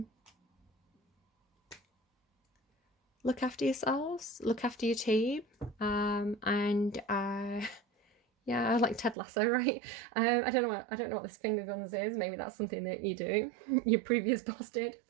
Look after yourselves, look after your team, yeah, I like Ted Lasso, right? I don't know what this finger guns is. Maybe that's something that you do. Your previous boss did,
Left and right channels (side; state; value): left; drops out; at 9.2 s